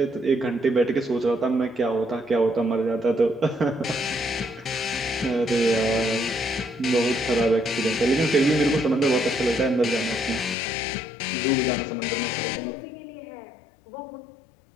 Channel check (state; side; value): drops out; right; at 10.6 s